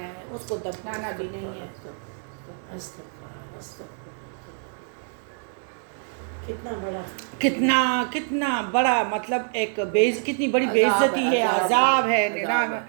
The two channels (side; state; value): left; silent; 55 dB below the other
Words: ہے، اس کو دفنانا بھی نہیں ہے. کتنا بڑا مطلب ایک کتنی بڑی بے عزتی ہے، عذاب ہے.